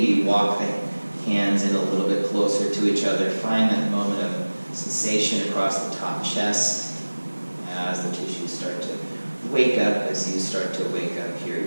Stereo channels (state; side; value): inverted; both; correlation -1.00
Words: walk the hands in a little bit closer to each other. Find that moment of sensation across the top chest as the tissues start to wake up, as you start to wake up here